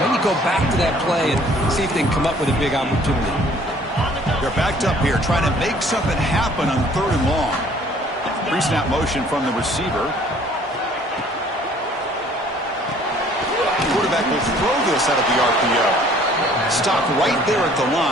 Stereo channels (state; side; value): normal; both; correlation 0.56